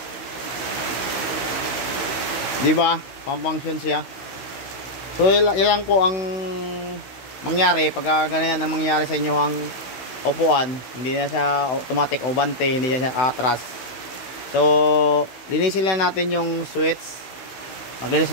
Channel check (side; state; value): right; late; 16 ms